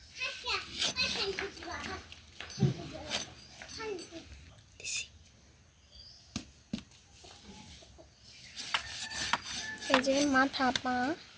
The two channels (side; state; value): both; identical; correlation 1.00